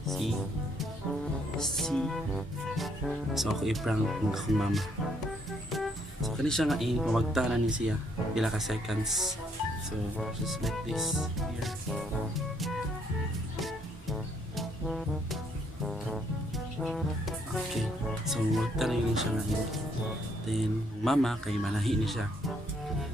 See? So ako i-prank ng akong mama. So kani siya nga pamagtanan ni siya. Pila ka seconds. So just like this here. Okay, so magtanay din siya ngayon. Then, mama, kay manahi ni siya.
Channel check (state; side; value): normal; both; correlation 0.70